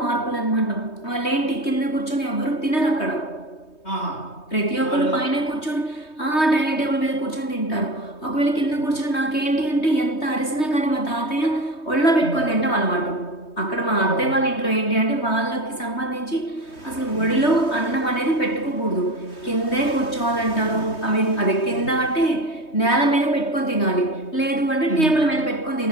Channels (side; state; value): right; late; 3.2 ms